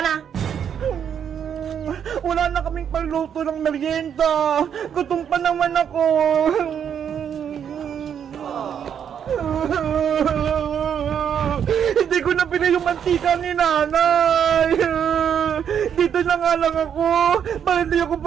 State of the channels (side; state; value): left; quieter; 8.3 dB